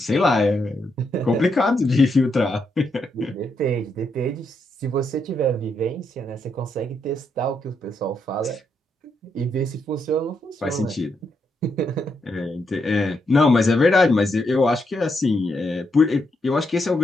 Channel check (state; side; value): normal; both; correlation 0.80